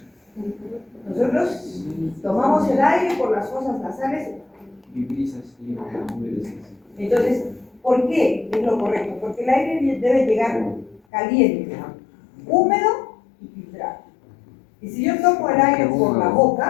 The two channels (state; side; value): drops out; right; at 11.0 s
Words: Nosotros tomamos el aire por las fosas nasales. Entonces, ¿por qué es lo correcto? Porque el aire debe llegar caliente, húmedo y filtrado. Y si yo tomo el aire por la